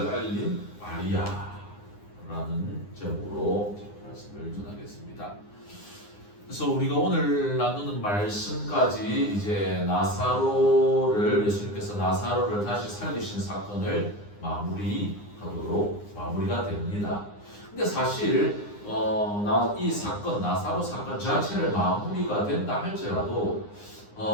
알린 마리아라는 제목으로 말씀을 전하겠습니다. 그래서 우리가 오늘 나누는 말씀까지 이제 나사로를 예수님께서 나사로를 다시 살리신 사건을 마무리가 됩니다. 근데 사실 이 사건 나사로 사건 자체를 마무리가 된다 할지라도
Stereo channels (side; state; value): right; late; 9.8 ms